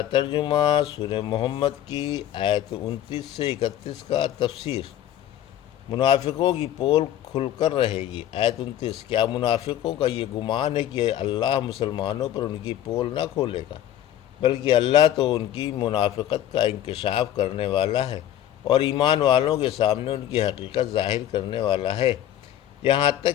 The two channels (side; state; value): right; quieter; 11.7 dB